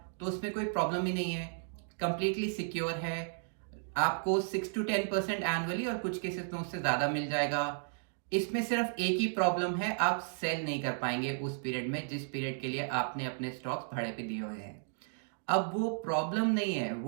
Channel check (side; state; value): left; silent; digital silence